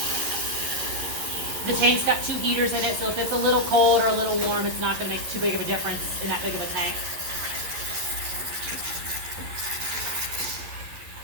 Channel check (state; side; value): late; left; 11 ms